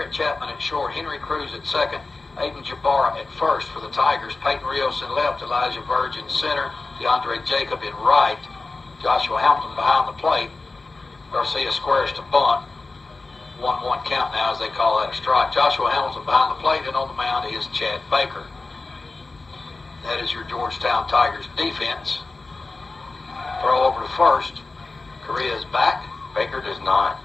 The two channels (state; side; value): quieter; right; 3.6 dB